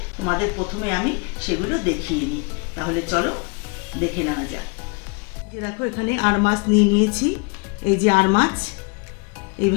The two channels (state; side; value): quieter; right; 33.3 dB